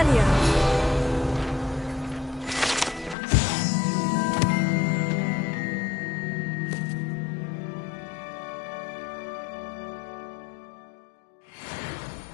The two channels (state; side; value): drops out; right; at 3.2 s